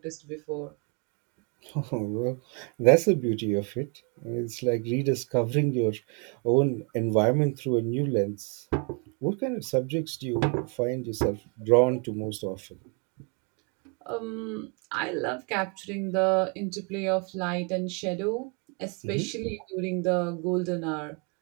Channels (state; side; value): quieter; left; 35.1 dB